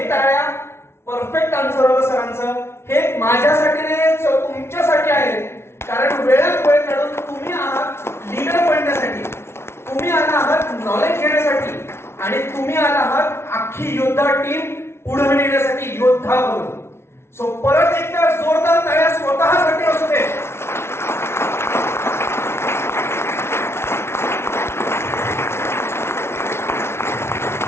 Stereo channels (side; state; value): right; late; 0.12 ms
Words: टाळ्या परफेक्ट आन्सर होतं सरांचं. हे माझ्यासाठी नाही, तुमच्यासाठी आहे. कारण वेळात वेळ काढून तुम्ही आहात लीडर बनण्यासाठी, तुम्ही आला आहात नॉलेज घेण्यासाठी, आणि तुम्ही आला आहात अख्खी योद्धा टीम पुढे नेण्यासाठी योद्धा बनून. सो परत एकदा जोरदार टाळ्या स्वतःसाठी असू दे.